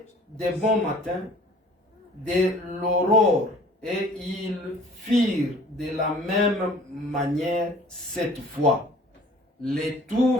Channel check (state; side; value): normal; both; correlation 0.50